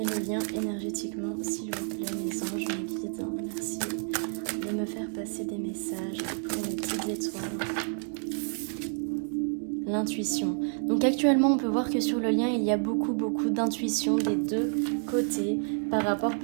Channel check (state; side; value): silent; left; 58 dB below the other